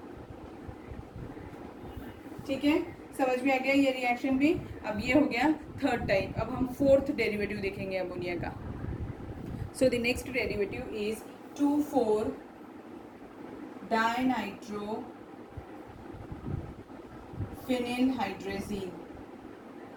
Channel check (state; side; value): identical; both; correlation 1.00